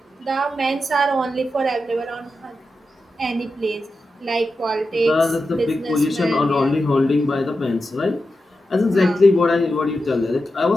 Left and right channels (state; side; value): normal; both; correlation 0.90